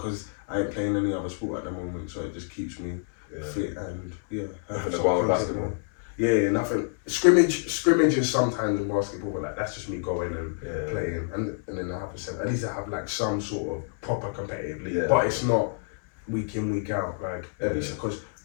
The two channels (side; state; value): right; silent; 60 dB below the other